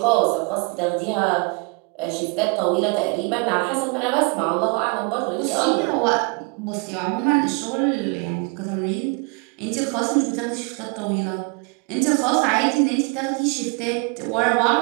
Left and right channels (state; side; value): quieter; left; 31.2 dB